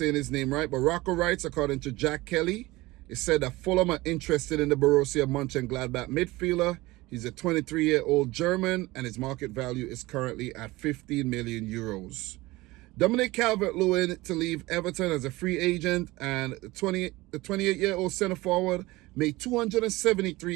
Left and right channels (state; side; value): quieter; left; 20.2 dB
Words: his name right, but Rocco Wrights, according to Jack Kelly, it said that Fulham are interested in the Borussia Mönchengladbach midfielder. He's a 23-year-old German, and his market value is currently at 15 million euros. Dominic Calvert-Lewin to leave Everton as a free agent, and the 28-year-old centre-forward made